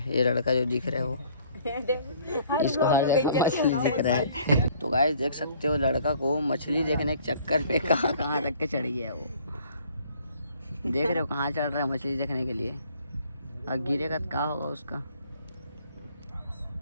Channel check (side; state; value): both; inverted; correlation -0.57